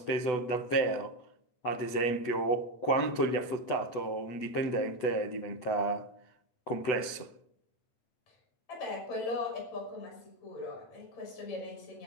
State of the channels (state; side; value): late; right; 8.0 ms